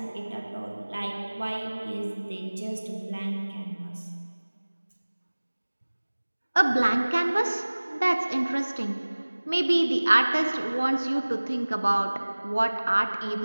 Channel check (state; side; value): inverted; both; correlation -1.00